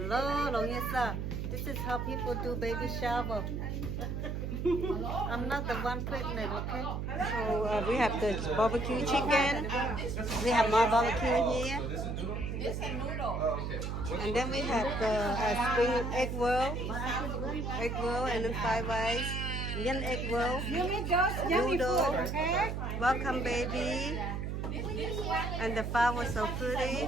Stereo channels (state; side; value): noise; right; hum, 3 dB below the sound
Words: Longisa. This is how people do baby shower. I'm not the one pregnant, okay? So we have the barbecue chicken. We have more barbecue here. And then we have the spring egg roll, and then fried rice, onion egg roll, noodle. Welcome, baby. And the flower was so pretty.